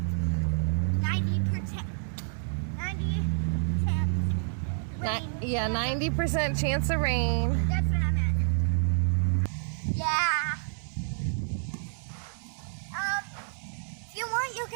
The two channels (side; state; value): left; silent; digital silence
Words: 90%. 90 chance rain. Yeah, 90% chance of rain. That's what I meant. Yeah. If you want, you